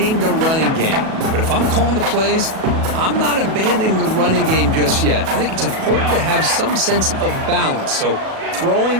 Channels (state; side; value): late; left; 37 ms